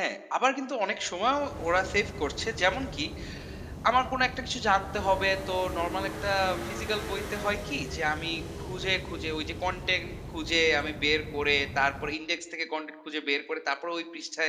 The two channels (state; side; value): identical; both; correlation 1.00